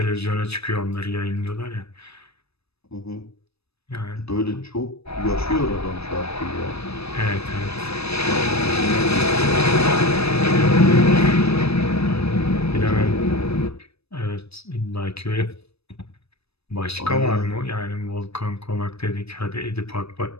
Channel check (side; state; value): right; late; 0.78 ms